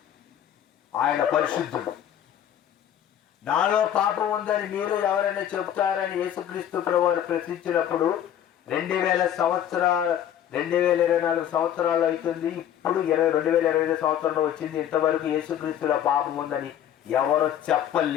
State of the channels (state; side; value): quieter; right; 10.4 dB